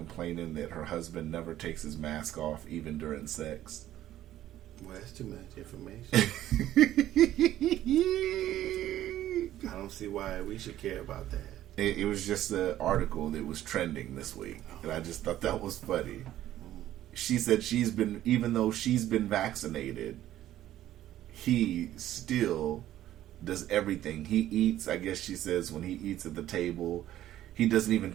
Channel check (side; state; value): left; quieter; 13.1 dB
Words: that her husband never takes his mask off even during sex? Well, that's too much information. I don't see why we should care about that. It was just an article that was trending this week, and I just thought that was funny. She said even though she's been vaccinated, he still does everything. He eats, I guess she says, when he eats at the table, he doesn't even